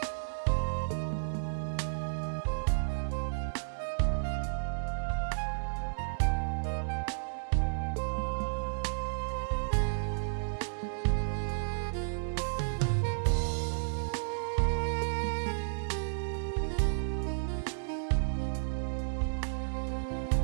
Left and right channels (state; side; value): silent; left; digital silence